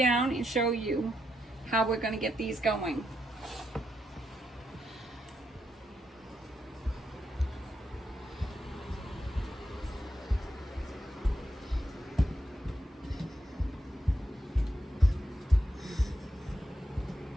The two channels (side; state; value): both; normal; correlation 0.82